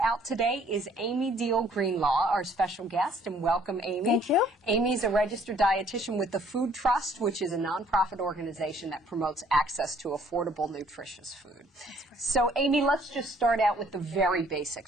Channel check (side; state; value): both; normal; correlation 0.61